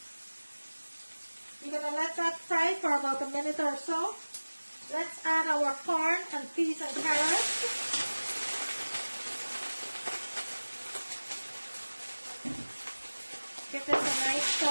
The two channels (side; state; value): both; inverted; correlation -1.00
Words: You're going to let that fry for about a minute or so. Let's add our corn and peas and carrots. Give this a nice